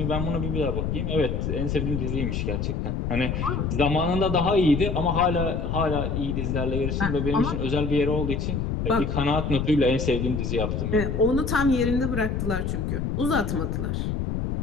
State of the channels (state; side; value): noise; left; rumble, 1 dB below the sound